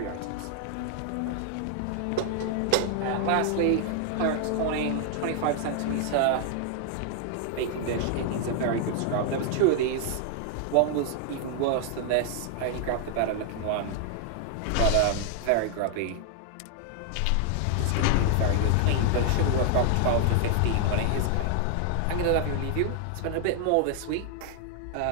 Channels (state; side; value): different; both; correlation 0.00